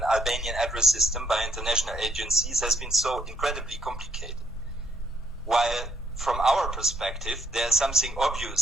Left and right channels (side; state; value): both; normal; correlation 0.70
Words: Albanian address system by international agencies has been so incredibly complicated. While from our perspective, there's something